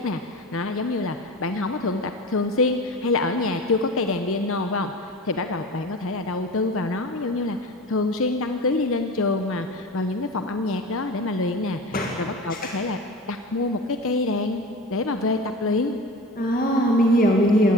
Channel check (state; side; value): normal; both; correlation 0.33